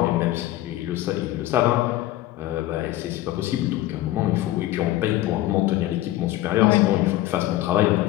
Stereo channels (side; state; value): right; quieter; 15.4 dB